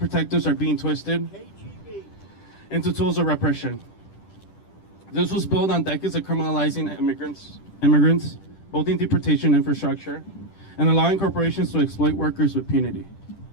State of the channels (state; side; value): late; right; 10 ms